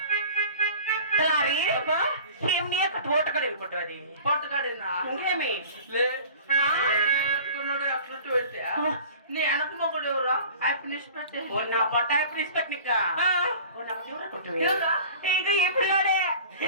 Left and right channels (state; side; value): inverted; both; correlation -0.42